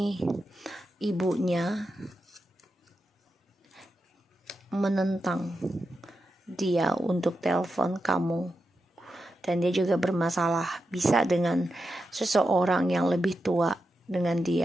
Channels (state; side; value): normal; both; correlation 0.88